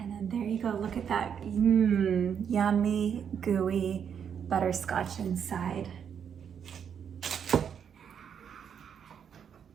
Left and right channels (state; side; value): quieter; left; 7.8 dB